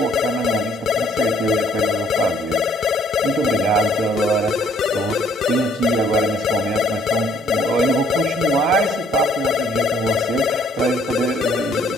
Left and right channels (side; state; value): both; normal; correlation 0.62